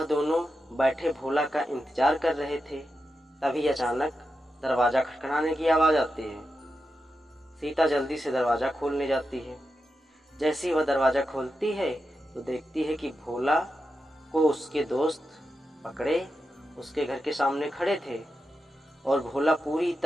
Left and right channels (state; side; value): normal; both; correlation 0.89